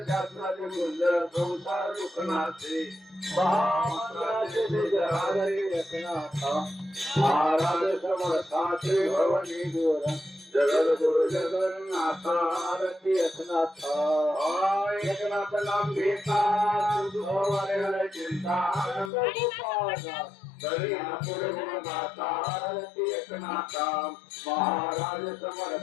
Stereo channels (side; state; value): right; drops out; at 19.1 s